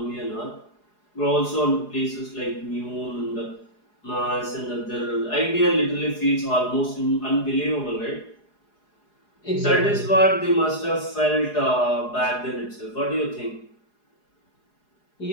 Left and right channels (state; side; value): late; right; 4.8 ms